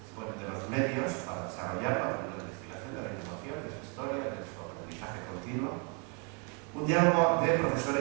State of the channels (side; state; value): left; quieter; 36.1 dB